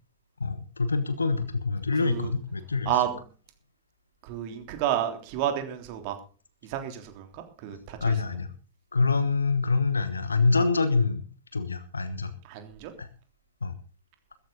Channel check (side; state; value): both; inverted; correlation -0.71